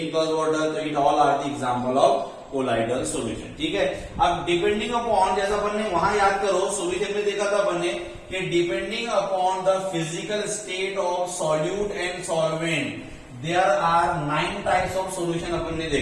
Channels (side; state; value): both; identical; correlation 1.00